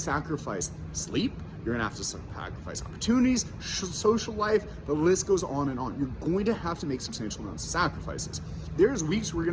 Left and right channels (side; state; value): both; identical; correlation 1.00